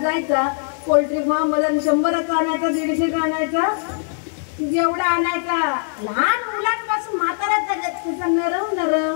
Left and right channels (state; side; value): silent; right; 65 dB below the other